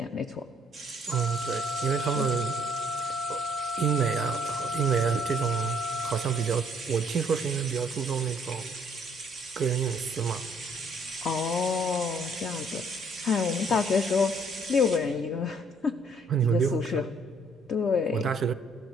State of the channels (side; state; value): both; normal; correlation 0.64